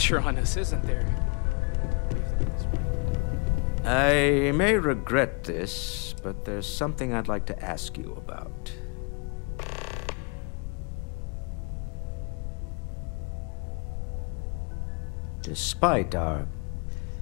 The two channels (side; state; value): right; quieter; 36.0 dB